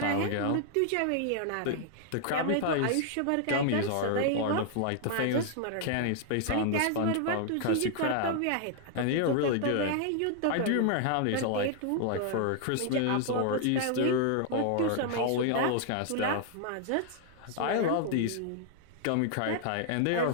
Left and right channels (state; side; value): different; both; correlation 0.00